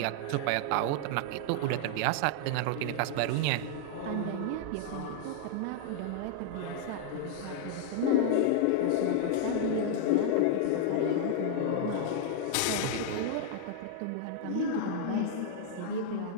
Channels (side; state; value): both; different; correlation -0.01